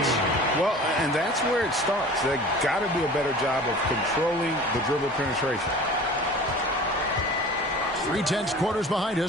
Well, and that's where it starts. They got to do a better job of controlling the dribble penetration. 3/10 quarters behind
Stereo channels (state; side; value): normal; both; correlation 0.41